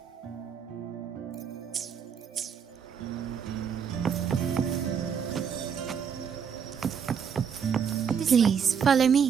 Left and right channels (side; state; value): left; quieter; 7.2 dB